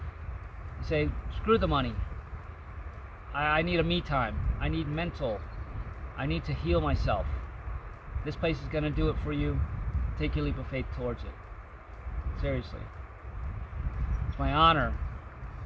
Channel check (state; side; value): identical; both; correlation 1.00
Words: and say, screw the money. I need a me time. I need mental. I need to heal myself. This place is going to do it for you. Take your leap of faith towards it. Seriously. It's my honor